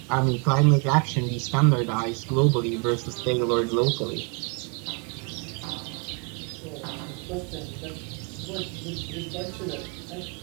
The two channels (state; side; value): quieter; left; 34.7 dB